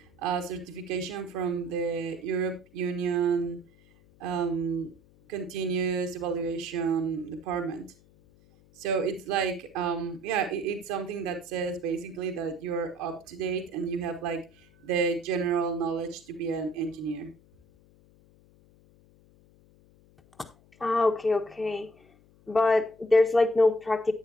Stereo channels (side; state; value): left; noise; hum, 28 dB below the sound